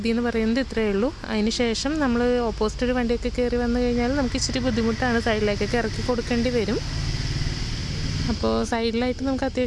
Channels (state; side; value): identical; both; correlation 1.00